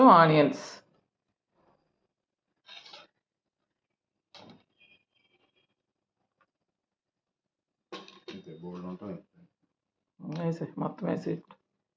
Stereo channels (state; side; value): identical; both; correlation 1.00